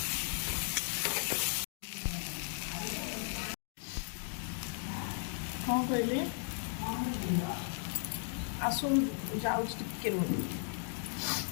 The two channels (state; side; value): silent; right; digital silence